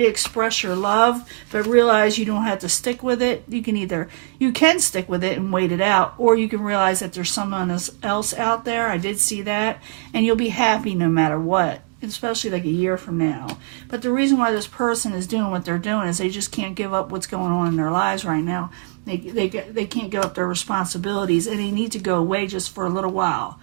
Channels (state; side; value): quieter; left; 36.6 dB